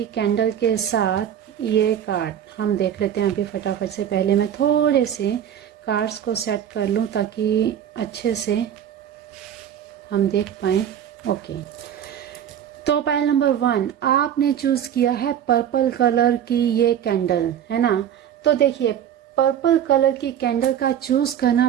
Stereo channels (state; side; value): quieter; left; 9.7 dB